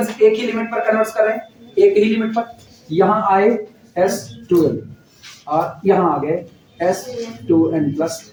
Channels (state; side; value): identical; both; correlation 1.00